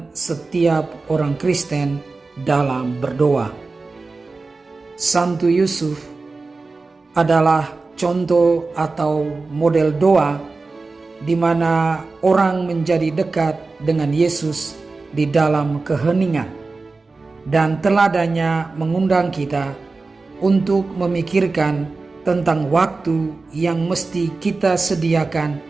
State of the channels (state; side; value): quieter; left; 3.8 dB